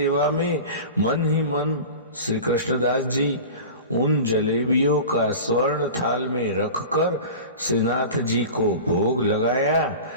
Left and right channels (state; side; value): inverted; both; correlation -0.34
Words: में मन ही मन श्री कृष्णदास जी उन जलेबियों का स्वर्ण थाल में रखकर श्रीनाथ जी को भोग लगाया